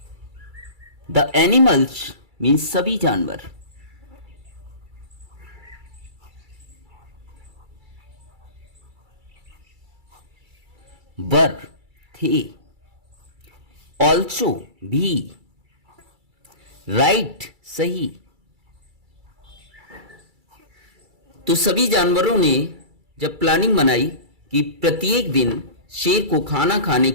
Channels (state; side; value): late; left; 2.3 ms